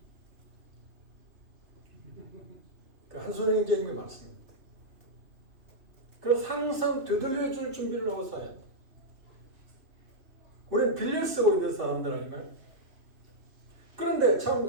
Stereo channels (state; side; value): late; left; 2.8 ms